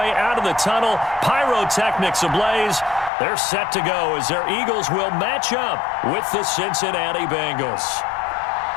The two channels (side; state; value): right; drops out; at 3.1 s